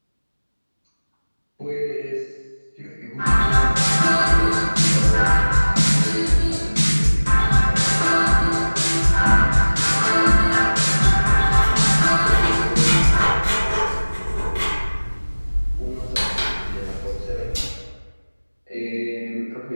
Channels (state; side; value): inverted; both; correlation -1.00